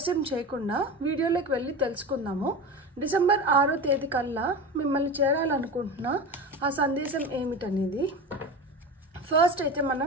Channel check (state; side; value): normal; both; correlation 0.27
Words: చేయకుండా వీడియోలోకి వెళ్ళి తెలుసుకుందాము। డిసెంబర్ 6వ తేదీ కల్లా మిమ్మల్ని చేరాలనుకుంటున్న ఆ సందేశం ఏమిటనేది ఫస్ట్ అయితే